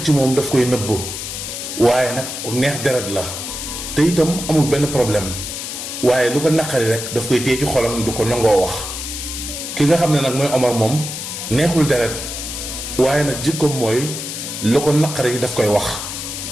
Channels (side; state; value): left; noise; hiss, 6 dB below the sound